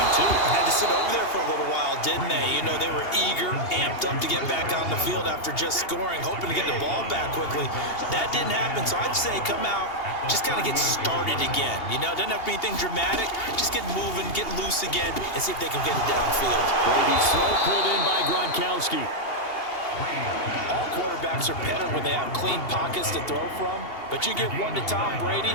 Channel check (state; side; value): late; right; 2.8 ms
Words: too. Had to sit over there for a little while, didn't they? You know, they were eager, amped up to get back on the field after just scoring, hoping to get the ball back quickly. That didn't happen, so I'd say come out, just kind of get started again. You know, doesn't have to be anything dramatic. Just get moving, get loose again, and see if they can get it downfield. Brady's throw pulled in by Gronkowski. All quarterbacks are better when they have clean pockets to throw from, but you give one to Tom Brady,